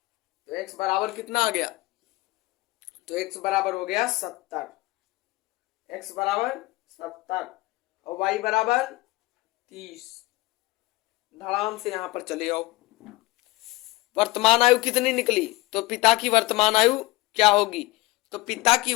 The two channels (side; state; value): right; quieter; 20.4 dB